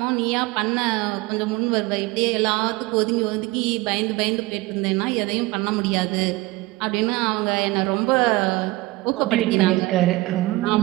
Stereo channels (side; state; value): left; quieter; 20.6 dB